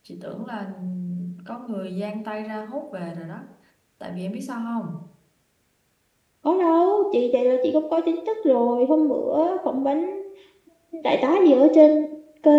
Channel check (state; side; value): identical; both; correlation 1.00